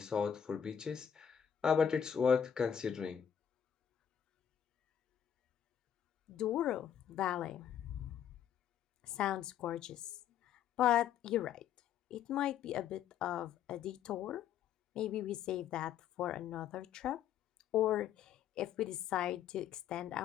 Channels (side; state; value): right; quieter; 9.0 dB